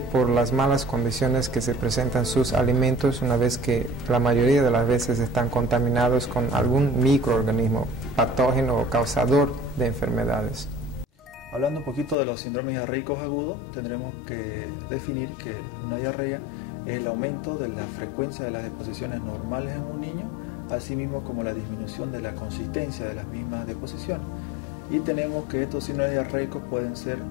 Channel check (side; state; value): right; drops out; at 12.2 s